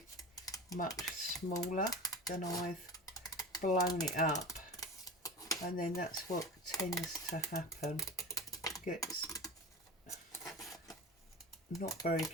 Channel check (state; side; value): normal; both; correlation 0.32